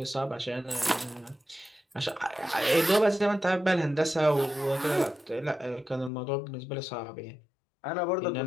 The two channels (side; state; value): right; drops out; at 6.1 s